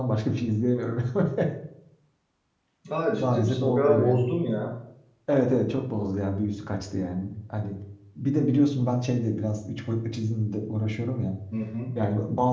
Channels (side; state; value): both; identical; correlation 1.00